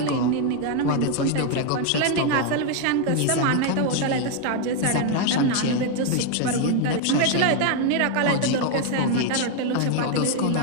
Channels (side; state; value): both; different; correlation 0.01